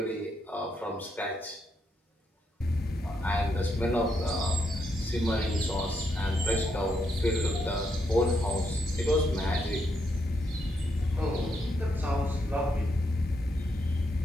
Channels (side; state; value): both; normal; correlation 0.79